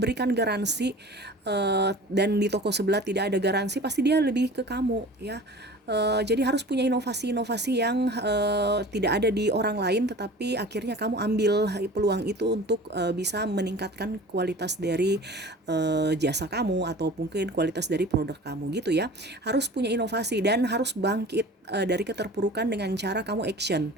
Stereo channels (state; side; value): normal; both; correlation 0.41